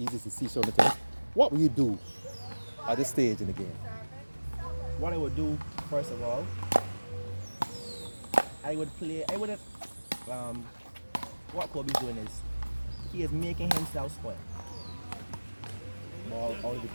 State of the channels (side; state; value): both; inverted; correlation -1.00